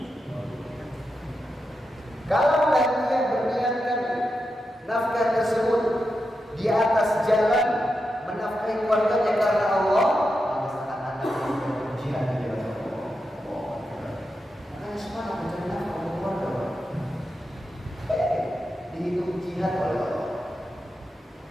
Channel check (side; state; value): both; normal; correlation 0.88